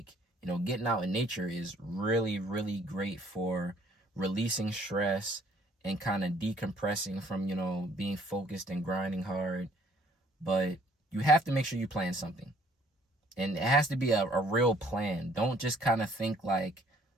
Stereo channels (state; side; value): normal; both; correlation 0.61